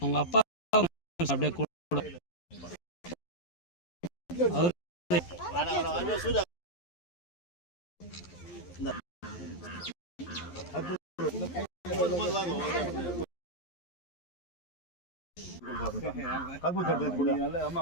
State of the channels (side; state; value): right; late; 11 ms